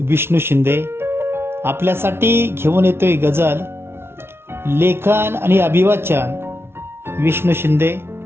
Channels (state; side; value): late; left; 0.12 ms